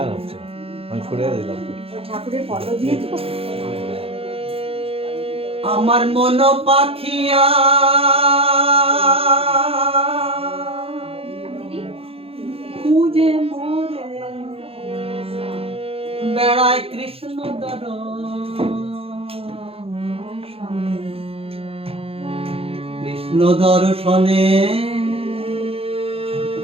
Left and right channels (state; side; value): late; left; 0.28 ms